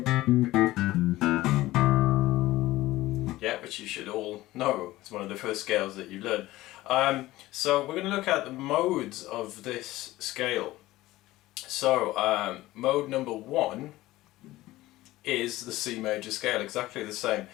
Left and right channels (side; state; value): right; quieter; 17.2 dB